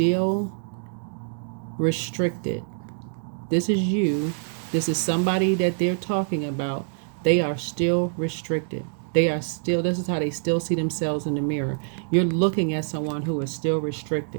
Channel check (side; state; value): left; silent; digital silence